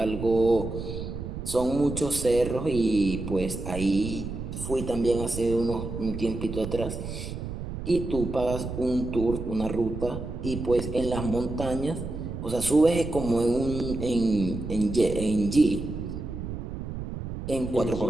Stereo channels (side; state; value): right; noise; rumble, 7 dB below the sound